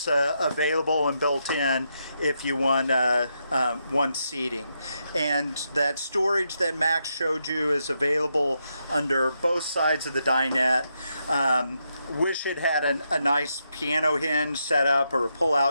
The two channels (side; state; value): both; inverted; correlation -0.82